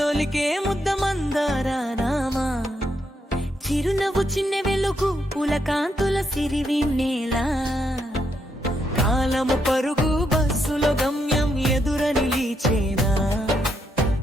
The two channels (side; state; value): both; normal; correlation 0.78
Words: ముద్ద మందారామా చిరునవ్వు చిన్న వెలుగు పూల కాంతుల సిరివిన్నేలా కాలము పరుగు బస్సులో గమ్యం ఎదుర నిలిచేనా